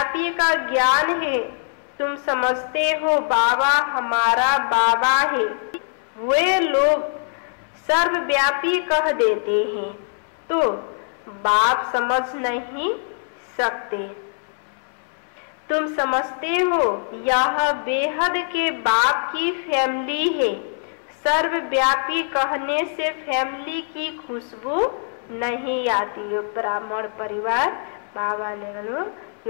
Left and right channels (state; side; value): silent; right; 64 dB below the other